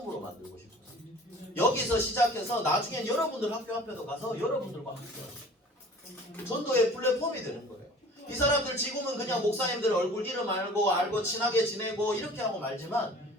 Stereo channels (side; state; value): both; normal; correlation 0.46